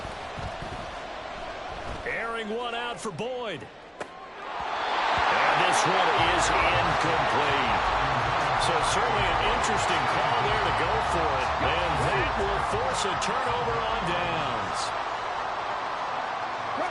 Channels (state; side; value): identical; both; correlation 1.00